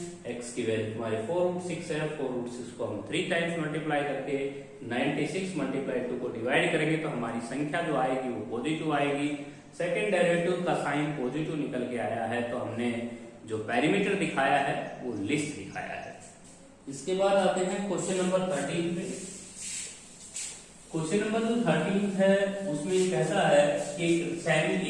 एक्स की वैल्यू हमारे 4√6 है, 4√6 को हम 3 टाइम्स मल्टीप्लाई करके 96 मल्टीप्लाई 2 को डिवाइड करेंगे तो हमारी संख्या जो आएगी वो पॉजिटिव आएगी। सेकंड डेरिवेटिव का साइन पॉजिटिव निकल के आया है तो हमने जो पैरामीटर दिखाया है वो लिस्ट दिखाया है। इसके बाद आते हैं क्वेश्चन नंबर 13 पे। क्वेश्चन नंबर जो 13 है उसमें कैसा है कि एक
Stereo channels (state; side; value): identical; both; correlation 1.00